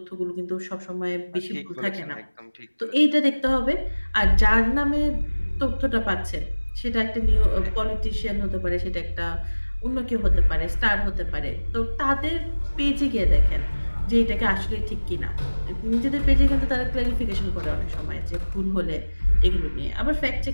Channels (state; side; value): inverted; both; correlation -1.00